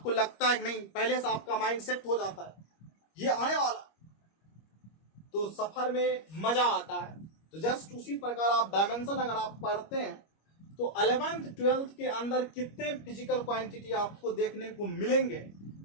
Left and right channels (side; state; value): right; late; 25 ms